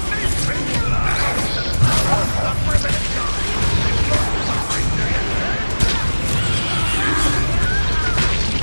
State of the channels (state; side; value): inverted; both; correlation -1.00